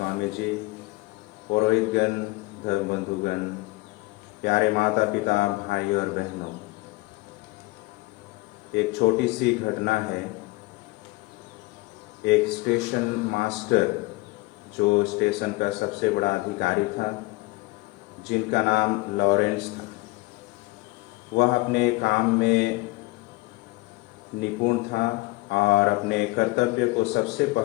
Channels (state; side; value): quieter; right; 22.2 dB